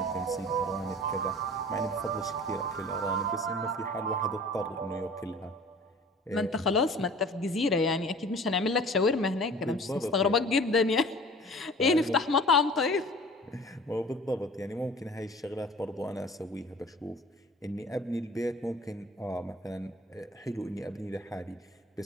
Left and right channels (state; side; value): normal; both; correlation 0.45